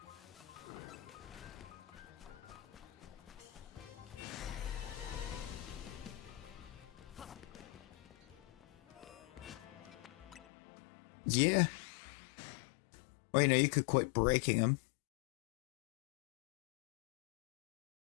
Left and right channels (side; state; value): right; drops out; at 10.5 s